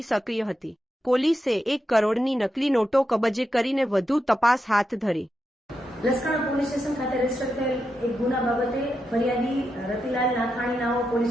સક્રિય હતી। પોલીસે 1 કરોડની નકલી નોટો કબજે કરીને વધુ તપાસ હાથ ધરી। લસકાણા પોલીસ સ્ટેશન ખાતે રજીસ્ટર થયેલ એક ગુના બાબતે ફરિયાદી રતિલાલ નાથાણી નાઓ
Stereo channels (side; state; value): both; normal; correlation 0.86